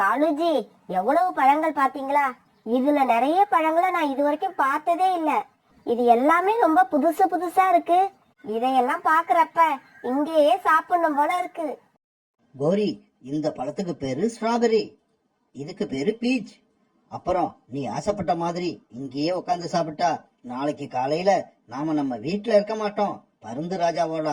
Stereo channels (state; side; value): identical; both; correlation 1.00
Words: எவ்வளவு பழங்கள் பாத்தீங்களா? இதுல நிறைய பழங்களை நான் இது வரைக்கும் பார்த்ததே இல்ல. இது எல்லாமே ரொம்ப புதுசு புதுசா இருக்கு. இதையெல்லாம் பாக்குறப்ப இங்கேயே சாப்பிடணும் போல இருக்கு. கோரி, இந்த பழத்துக்கு பேரு ஸ்ட்ராபெரி, இதுக்கு பேரு பீச். அப்புறம் நீ ஆசைப்பட்ட மாதிரி இங்கேயே உட்காந்து சாப்பிட்டா நாளைக்கு காலையில நாம நம்ம வீட்டுல இருக்க மாட்டோம், பருந்து ராஜாவோட